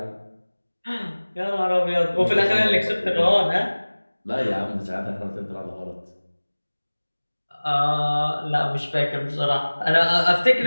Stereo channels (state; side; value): inverted; both; correlation -1.00